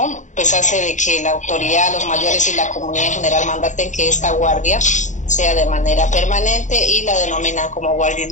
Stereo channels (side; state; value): right; late; 0.35 ms